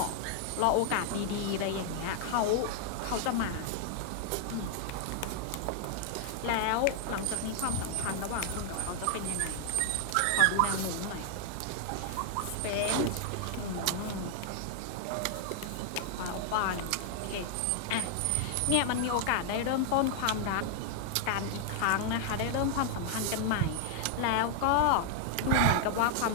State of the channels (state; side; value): different; both; correlation 0.00